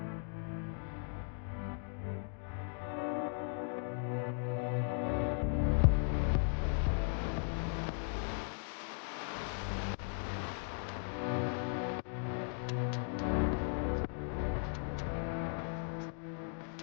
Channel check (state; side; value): silent; right; 53 dB below the other